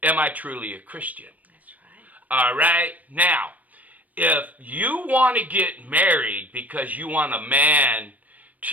Am I truly a Christian? That's right. All right? Now, if you want to get married because you want a man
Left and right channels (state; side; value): late; left; 0.075 ms